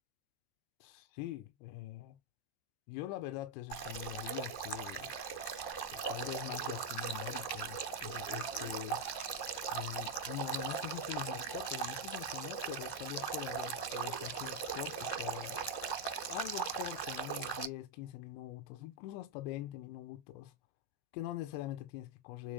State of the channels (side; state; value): right; late; 15 ms